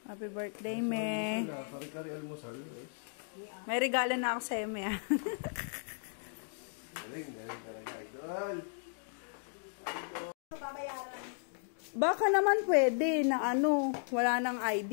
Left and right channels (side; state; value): right; silent; digital silence